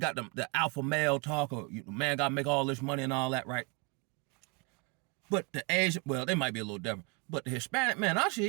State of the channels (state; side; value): quieter; left; 31.2 dB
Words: the alpha male talk, or man got to make all this money and all that, right? But the Asian, well, they might be a little different. But the Hispanic man I